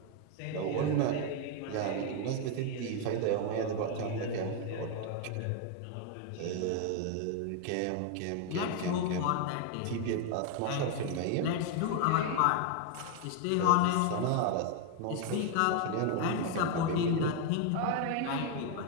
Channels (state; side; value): different; both; correlation 0.01